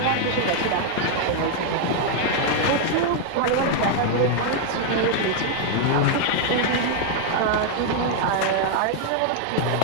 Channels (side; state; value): both; different; correlation 0.00